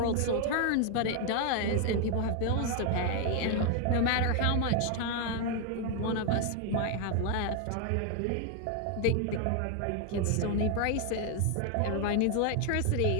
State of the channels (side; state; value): both; different; correlation 0.01